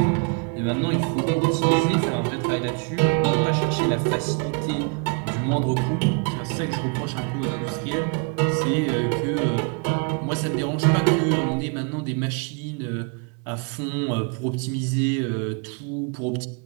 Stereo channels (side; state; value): left; quieter; 36.9 dB